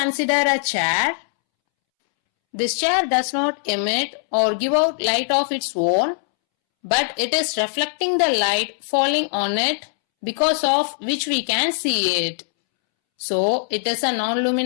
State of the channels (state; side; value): silent; right; 65 dB below the other